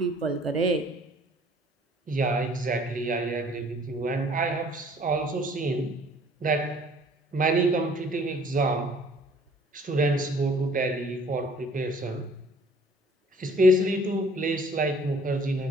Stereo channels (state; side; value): normal; both; correlation 0.56